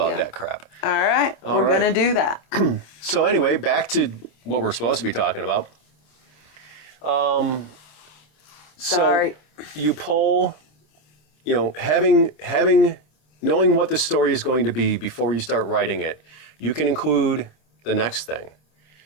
that crap. All right, we're gonna do that. So anyway, back to what we're supposed to be talking about. Sorry. You pull, knowing what the story is going to be before you start writing it, you can include the next thing,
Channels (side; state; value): right; late; 26 ms